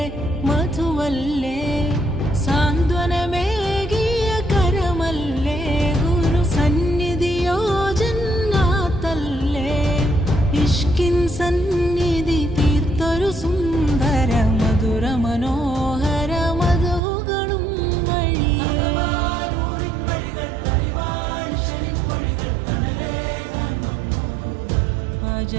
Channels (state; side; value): drops out; left; at 17.0 s